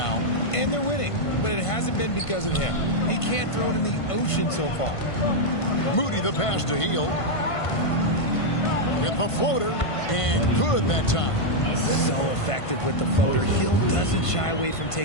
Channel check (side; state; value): right; late; 1.5 ms